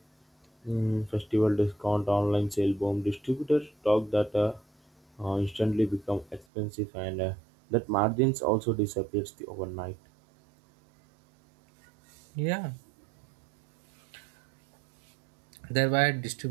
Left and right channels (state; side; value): drops out; left; at 6.5 s